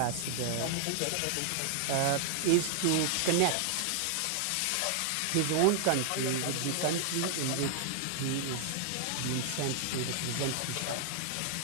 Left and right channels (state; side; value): different; both; correlation 0.00